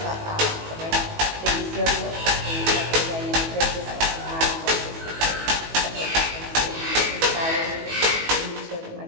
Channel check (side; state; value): left; late; 18 ms